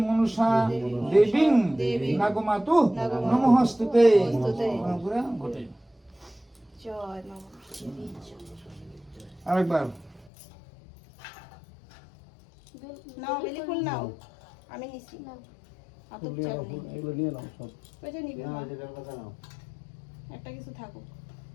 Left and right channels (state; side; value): drops out; right; at 10.3 s